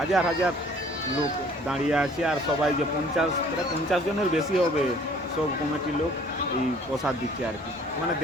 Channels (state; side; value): normal; both; correlation 0.55